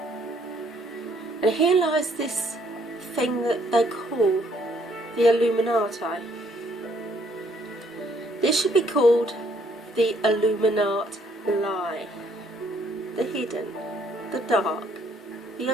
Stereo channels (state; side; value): normal; both; correlation 0.66